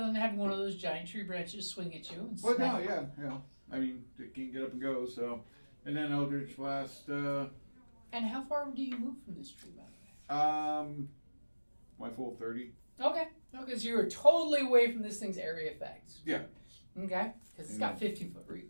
than having one of those giant tree branches swing at you. And Well, no, smack. yeah. I mean, it can't get up and go, so. And then Eldritch Blast, And how far do you move from this tree, by the way? my full 30. Okay. Okay, so you're totally away from this thing's area effects. Yeah. Okay. Because it's got 15-foot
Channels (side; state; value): both; inverted; correlation -1.00